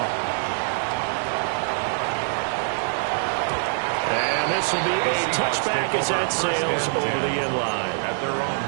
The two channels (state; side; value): silent; left; digital silence